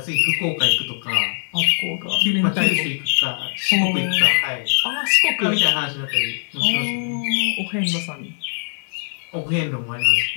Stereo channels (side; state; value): right; silent; digital silence